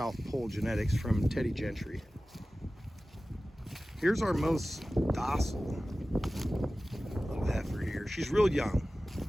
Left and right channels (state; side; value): normal; both; correlation 0.96